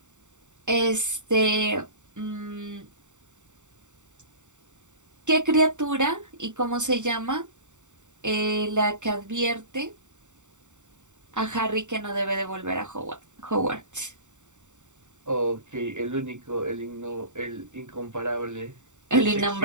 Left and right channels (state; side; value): late; left; 0.85 ms